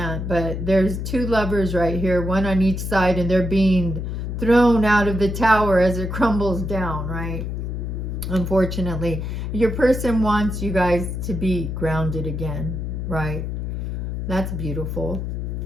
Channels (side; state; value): left; noise; hum, 4 dB below the sound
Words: but there's two lovers right here, one on each side, and they're being thrown out of the tower as it crumbles down, right? Unfortunately, your person wants you guys to be grounded again, right? That's beautiful.